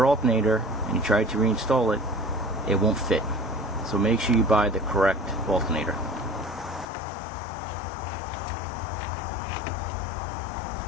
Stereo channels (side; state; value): right; drops out; at 6.9 s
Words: alternator and you try to reinstall it, it won't fit. So make sure you buy the correct alternator.